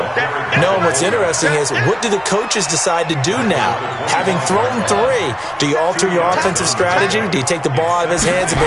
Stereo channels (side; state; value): both; identical; correlation 1.00